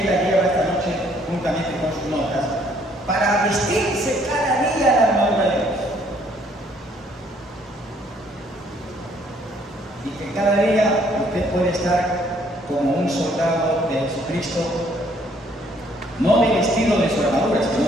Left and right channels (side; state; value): both; normal; correlation 0.64